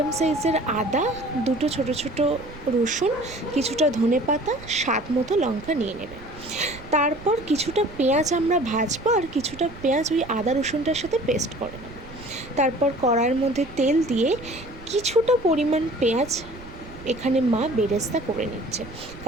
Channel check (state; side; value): noise; right; rumble, 17 dB below the sound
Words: সাইজের আদা, 2টো ছোটো ছোটো রসুন, কিছুটা ধনেপাতা, স্বাদ মতো লঙ্কা নিয়ে নেবে। তারপর কিছুটা পেঁয়াজ আমরা ভাজবো আর কিছুটা পেঁয়াজ ওই আদা রসুনটার সাথে পেস্ট করে নেব। তারপর কড়াইয়ের মধ্যে তেল দিয়ে কিছুটা পরিমাণ পেঁয়াজ এখানে মা বেরেস্তা করে নিচ্ছে,